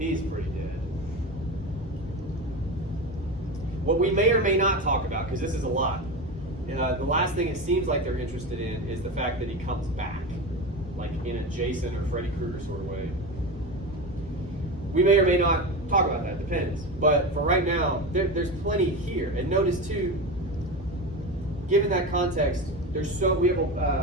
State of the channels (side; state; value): both; normal; correlation 0.23